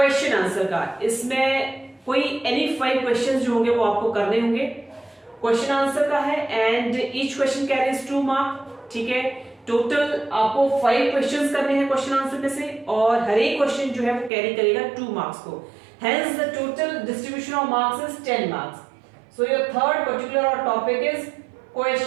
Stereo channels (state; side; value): drops out; left; at 14.3 s